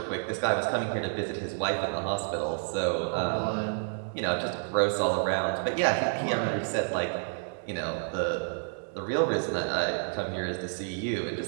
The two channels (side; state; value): left; silent; digital silence